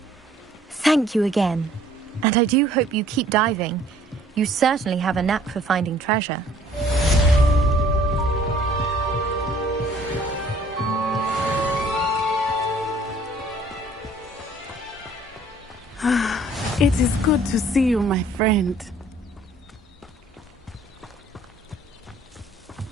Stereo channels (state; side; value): normal; both; correlation 0.57